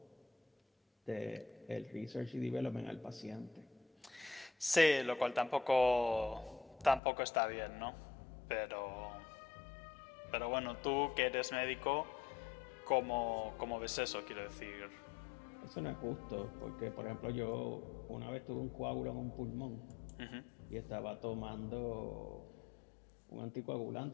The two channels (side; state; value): right; drops out; at 7.0 s